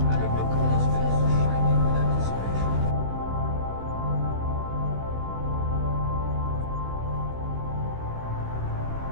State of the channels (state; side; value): late; left; 16 ms